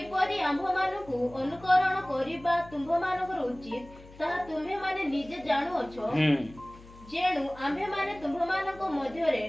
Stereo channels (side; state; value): left; noise; hum, 20 dB below the sound